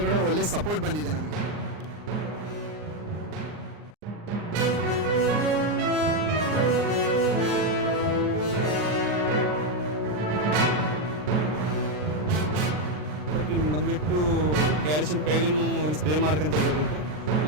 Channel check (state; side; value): late; left; 39 ms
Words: ಕೂಡ ಒಳ್ಳೆ ಸಪೋರ್ಟ್ ಬಂದಿದೆ ನಮಗೆ. ಬಂದ್ಬಿಟ್ಟು ಕ್ಯಾಲ್ಸಿಯಂ ಕೈಲಿನೂ ಒಂದು ಸ್ಪ್ರೇ ಮಾಡ್ಕೊಂತ ಇರಬೇಕು,